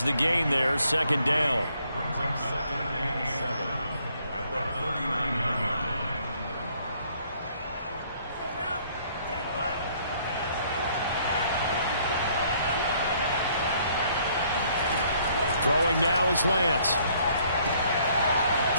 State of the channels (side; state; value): both; inverted; correlation -0.64